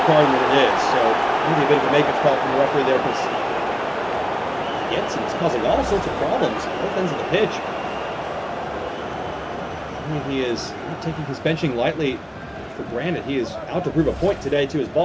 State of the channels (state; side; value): identical; both; correlation 1.00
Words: when it is. So maybe a bit of a make-up call from the referee there, because Jensen is causing all sorts of problems at both ends of the pitch. I mean, he is not taking his benching lightly for granted. He is out to prove a point today to his